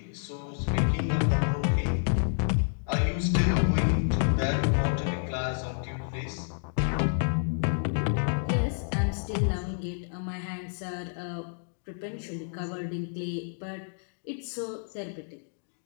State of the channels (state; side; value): silent; right; digital silence